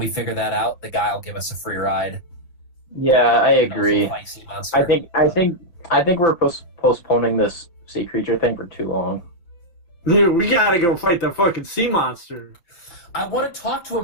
figure that out, the guy will give us a free ride. Yeah, I And also agree. fight sea monster. I think we're postponing this sea creature thing for too long. Dude, we gotta go fight the fucking sea monster. I want to talk to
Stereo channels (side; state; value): right; late; 5.8 ms